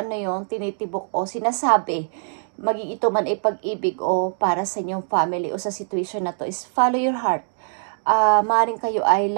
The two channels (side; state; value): left; silent; 64 dB below the other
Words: yung tinitibok o sinasabi. Maging ito man ay pag-ibig o para sa inyong family o sa situation na to is follow your heart. Maring kayo ay